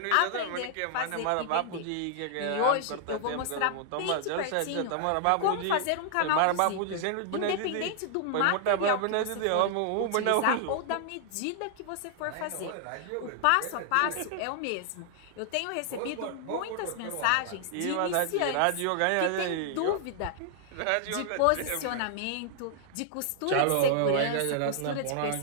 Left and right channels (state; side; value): different; both; correlation -0.01